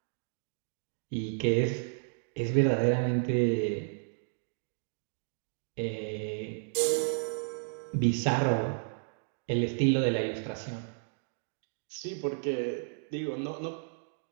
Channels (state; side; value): silent; left; digital silence